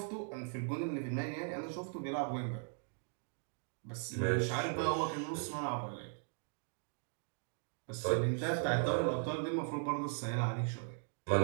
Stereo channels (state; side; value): silent; left; 52 dB below the other